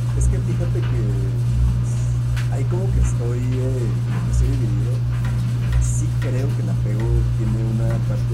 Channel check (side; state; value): both; identical; correlation 1.00